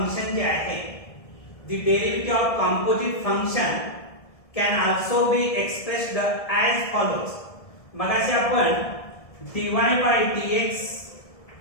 जे आहे, the derivative of composite function can also be expressed as follows. मगाशी आपण dy by dx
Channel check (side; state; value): right; late; 1.7 ms